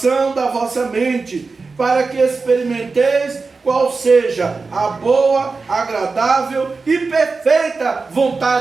da vossa mente, para que experimenteis qual seja a boa, agradável e perfeita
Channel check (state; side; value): quieter; left; 4.2 dB